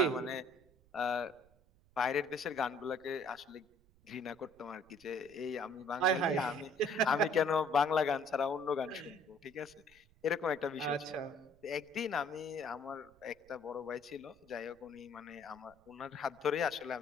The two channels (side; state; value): right; noise; rumble, 29 dB below the sound